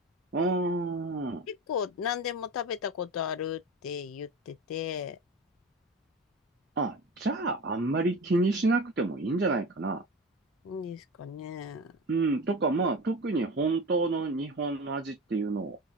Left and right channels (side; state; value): both; normal; correlation 0.30